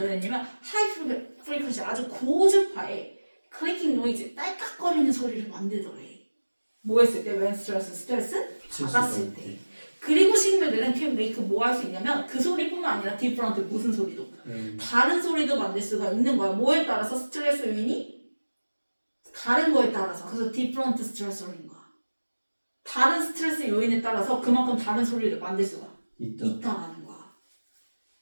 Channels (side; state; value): both; inverted; correlation -1.00